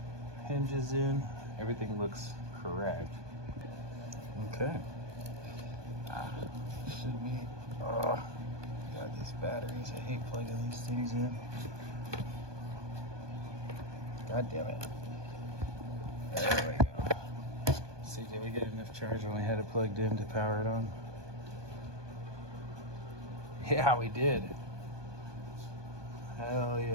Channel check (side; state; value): left; late; 1.2 ms